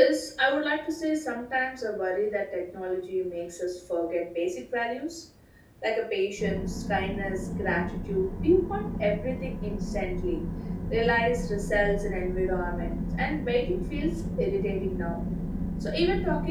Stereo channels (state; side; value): identical; both; correlation 1.00